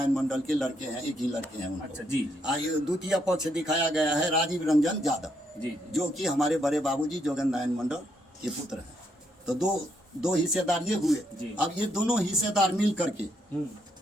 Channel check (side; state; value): both; normal; correlation 0.75